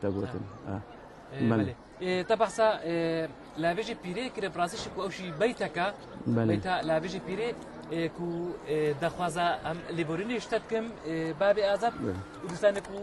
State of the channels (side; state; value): both; identical; correlation 1.00